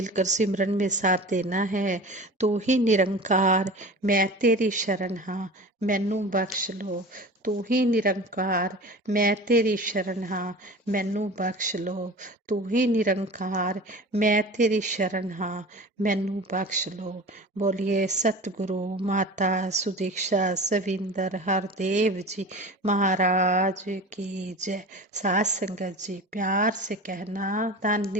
सिमरन में साथ देना है। तू ही निरंकार मैं तेरी शरण हाँ, मैनू बख्श लो। तू ही निरंकार मैं तेरी शरण हाँ, मैनू बख्श लो। तू ही निरंकार मैं तेरी शरण हाँ, मैनू बख्श लो। बोलिए सतगुरु माता सुदीक्षा सविंदर हरदेव जी महाराज की जय। साथ संगत जी प्यार से कहना धन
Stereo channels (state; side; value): normal; both; correlation 0.36